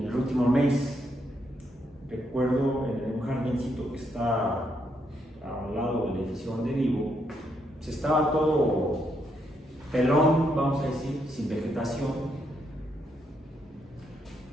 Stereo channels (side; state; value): both; normal; correlation 0.77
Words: el último mes, recuerdo en un jardincito que está al lado del edificio donde vivo, se estaba todo pelón, vamos a decir, sin vegetación.